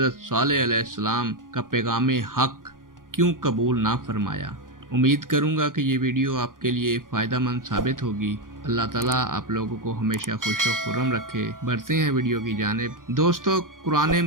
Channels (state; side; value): late; left; 0.90 ms